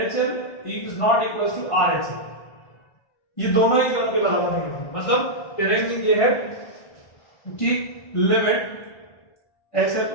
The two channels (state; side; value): late; right; 1.5 ms